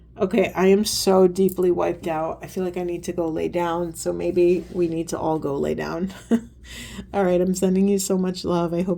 Okay, I am so deeply wiped out. I feel like I need to go lay down. So maybe we need to all go lay down. All right, I'm sending you so much love. I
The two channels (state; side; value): identical; both; correlation 1.00